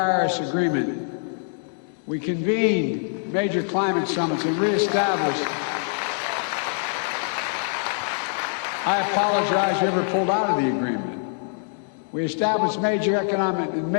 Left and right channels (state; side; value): silent; right; digital silence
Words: Agreement. We convened major climate summits and reestablished. I apologize whoever pulled out of the agreement. We established major